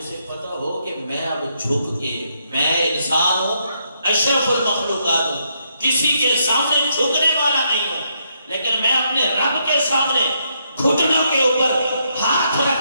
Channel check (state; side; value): inverted; both; correlation -0.76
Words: پتہ ہو کہ میں اب جھک کے، میں انسان ہوں، اشرف المخلوقات ہوں، کسی کے سامنے جھکنے والا نہیں ہوں، لیکن میں اپنے رب کے سامنے گھٹنوں کے اوپر ہاتھ